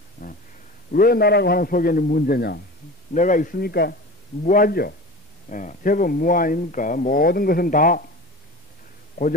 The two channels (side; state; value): both; normal; correlation 0.34